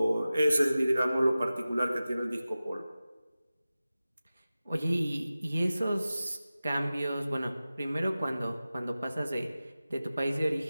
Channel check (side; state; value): both; inverted; correlation -0.95